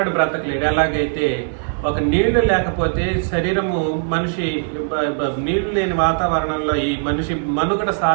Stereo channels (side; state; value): left; silent; 58 dB below the other